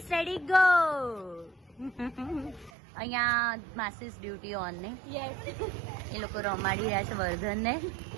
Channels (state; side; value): drops out; left; at 2.7 s